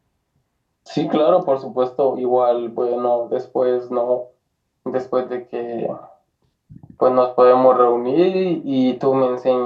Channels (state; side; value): identical; both; correlation 1.00